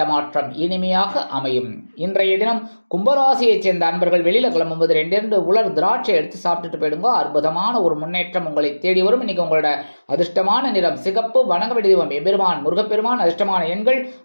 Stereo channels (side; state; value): both; inverted; correlation -1.00